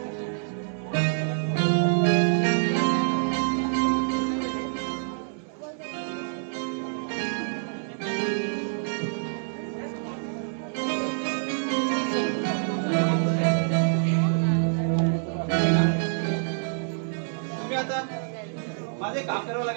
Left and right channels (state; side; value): silent; left; digital silence